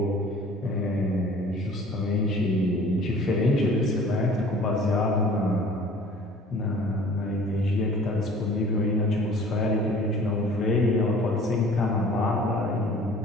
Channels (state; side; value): normal; both; correlation 0.48